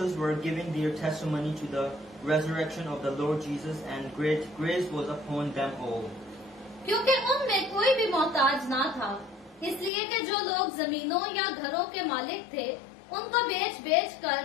were giving their testimony to the resurrection of the Lord Jesus, and great grace was upon them all. क्योंकि उनमें कोई भी मोहताज ना था, इसलिए कि जो लोग जमीनों या घरों के मालिक थे उनको बेच कर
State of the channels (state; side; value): drops out; right; at 9.9 s